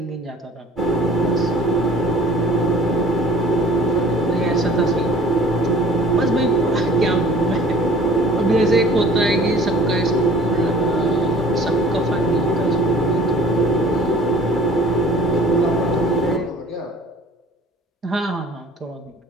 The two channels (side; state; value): both; normal; correlation 0.51